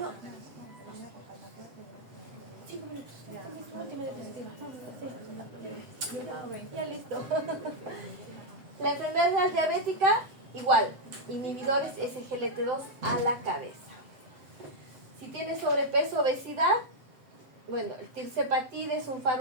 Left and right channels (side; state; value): left; late; 7.7 ms